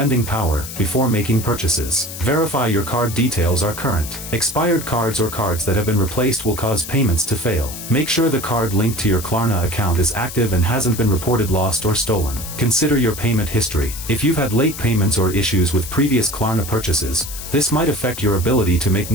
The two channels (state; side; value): noise; left; hiss, 10 dB below the sound